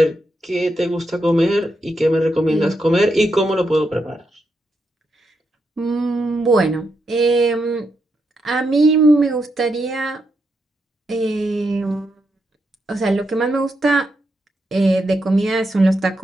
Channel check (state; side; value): normal; both; correlation 0.82